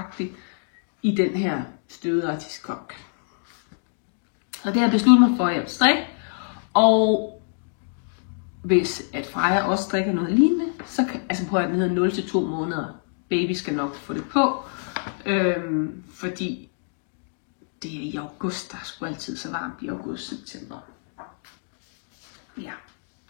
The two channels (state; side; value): silent; right; digital silence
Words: i den her støvede artiskok. Så det har jeg besluttet mig for, at jeg vil strikke. Og hvis at Freja også strikker noget lignende, så kan, altså prøv at den hedder 0 til 2 måneder. Baby skal nok få det på. Fordi det er i august, der er sgu altid så varmt i august-september. Ja.